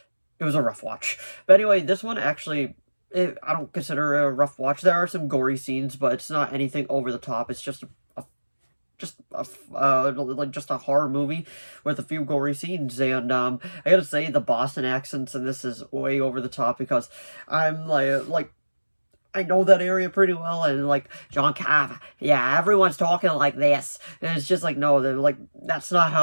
a rough watch. But anyway, this one actually, I don't consider it a rough watch. There are some gory scenes, but it's not anything over the top. It's just a horror movie with a few gory scenes. And I gotta say, the Boston accents in this is way over the top, because I'm like I know that area pretty well, and like, John Carver, yeah, everyone's talking like this, and it's just like, no, they're like, that's not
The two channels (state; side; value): inverted; both; correlation -1.00